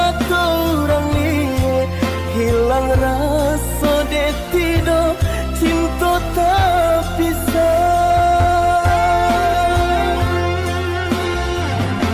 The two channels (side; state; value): both; identical; correlation 1.00